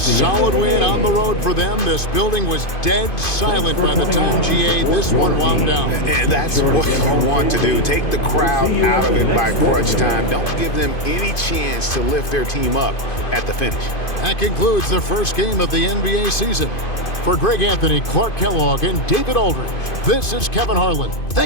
win on the road for them. This building was dead silent by the time, GA, this one wound down. And that's what you want to do. Take the crowd out of it by crunch time. Don't give them any chance to lift their team up at the finish. That concludes the first game of the NBA season. For Greg Anthony, Clark Kellogg, and David Aldridge, this is Kevin Harlan.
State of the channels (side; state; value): right; late; 2.5 ms